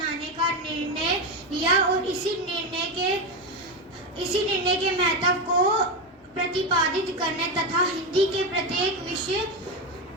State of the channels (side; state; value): both; normal; correlation 0.13